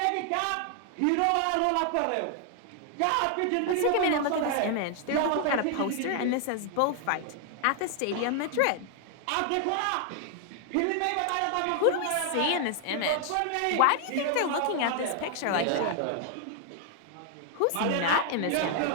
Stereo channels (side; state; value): both; different; correlation 0.00